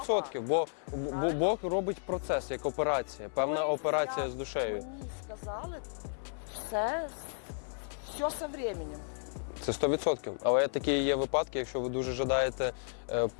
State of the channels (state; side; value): silent; right; 56 dB below the other